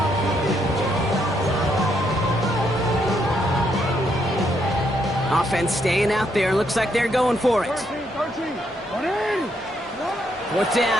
Offense staying out there. Looks like they're going for it. 4th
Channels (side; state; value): both; normal; correlation 0.75